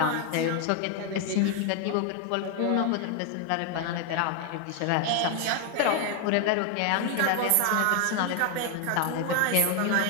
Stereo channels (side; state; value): both; different; correlation 0.01